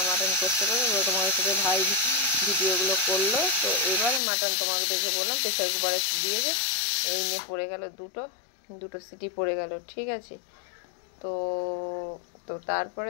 মাটন করতে করে তোমাদের সাথে ভাই ভিডিওগুলো করলো। তো এবার মাটন তোমাকে দেখে বললাম প্রেসার কুকারে দিয়েছে, এই নিয়ে পড়ে গেল দুটো সিটি পড়ে গেল, ঠিক আছে। তো তো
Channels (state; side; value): drops out; right; at 4.2 s